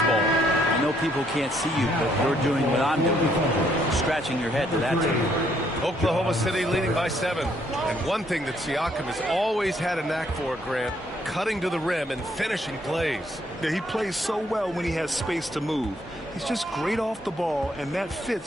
ball. I know people can't see you, but you're doing what I'm doing. Scratching your head to that tune. Oklahoma City leading by 7. And one thing that Siakam has always had a knack for, Grant, cutting to the rim and finishing plays. Yeah, he plays so well when he has space to move. He's just great off the ball, and that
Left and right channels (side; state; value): both; normal; correlation 0.69